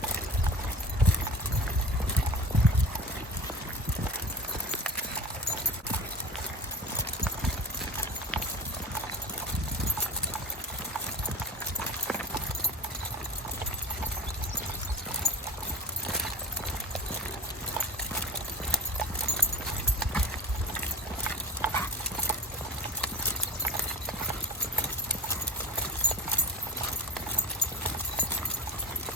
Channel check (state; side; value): normal; both; correlation 0.32